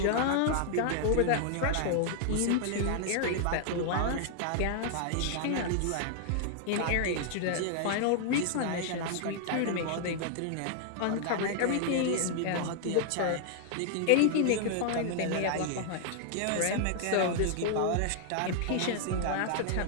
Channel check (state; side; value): different; both; correlation 0.00